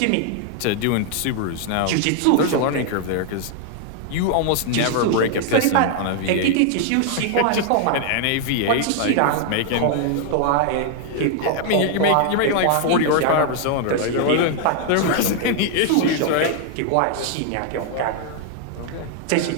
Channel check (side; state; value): both; different; correlation 0.00